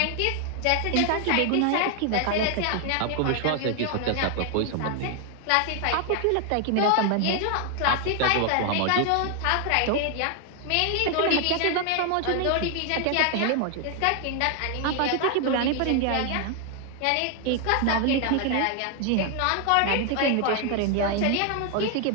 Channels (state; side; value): different; both; correlation 0.00